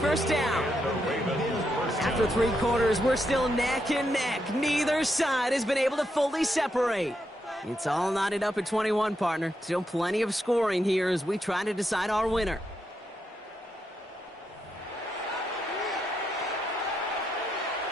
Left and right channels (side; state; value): both; normal; correlation 0.82